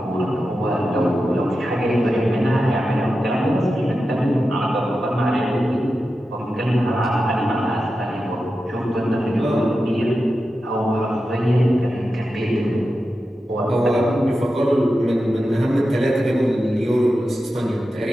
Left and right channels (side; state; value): both; normal; correlation 0.91